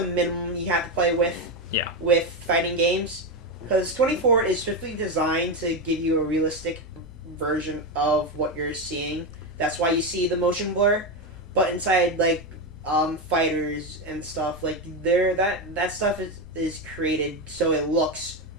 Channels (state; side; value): noise; left; hum, 19 dB below the sound